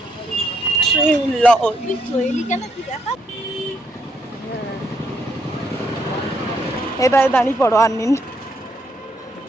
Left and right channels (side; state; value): both; normal; correlation 0.74